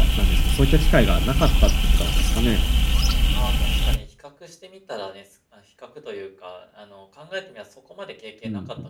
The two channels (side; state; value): both; identical; correlation 1.00